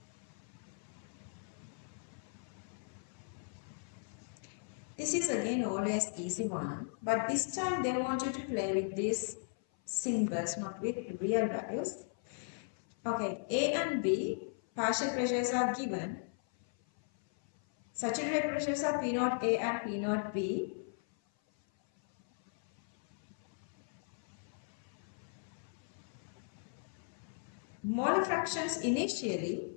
This is again always easy one, but this time they want you to play with these symbols, not with real values. Okay, A and B, partial pressures are given. Saturated pressures are P0 A and P0 B. Molar fractions initially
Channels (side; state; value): right; silent; 53 dB below the other